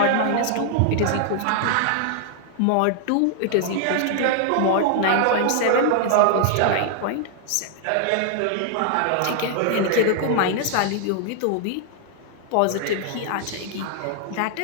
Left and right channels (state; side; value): different; both; correlation 0.00